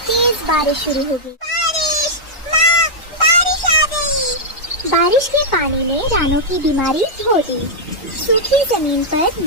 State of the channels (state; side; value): normal; both; correlation -0.07